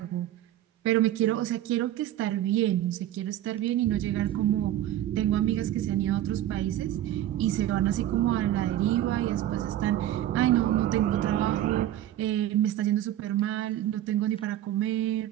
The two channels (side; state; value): left; quieter; 12.7 dB